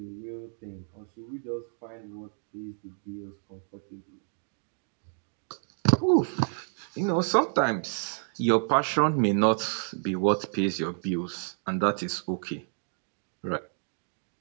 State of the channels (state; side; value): silent; left; 58 dB below the other